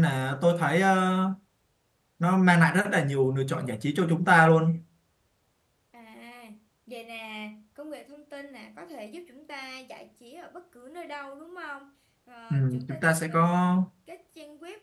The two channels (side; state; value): both; identical; correlation 1.00